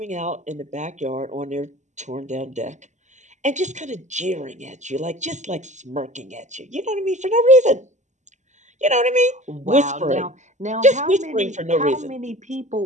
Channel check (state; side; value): late; left; 0.34 ms